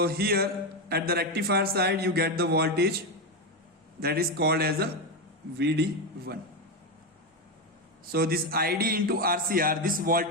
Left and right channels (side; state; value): both; normal; correlation 0.10